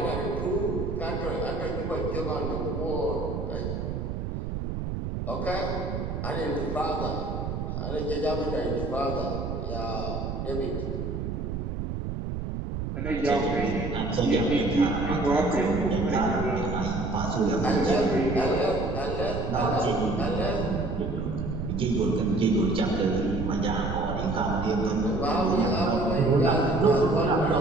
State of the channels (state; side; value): noise; right; rumble, 4 dB below the sound